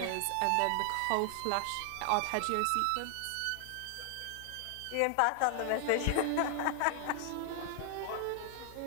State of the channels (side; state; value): both; different; correlation 0.00